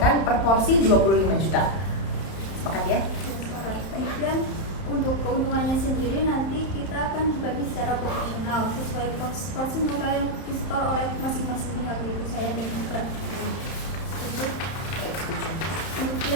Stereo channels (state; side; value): late; right; 31 ms